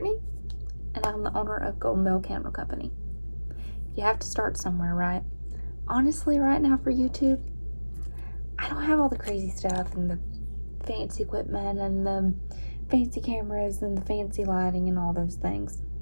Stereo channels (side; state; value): both; inverted; correlation -1.00